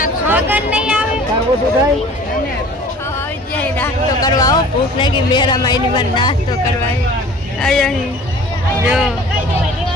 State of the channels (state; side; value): normal; both; correlation 0.46